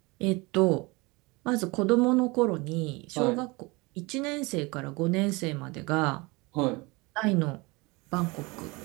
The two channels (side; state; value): left; quieter; 25.3 dB